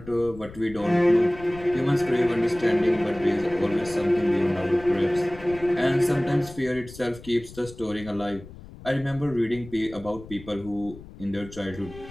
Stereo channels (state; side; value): noise; left; rumble, 17 dB below the sound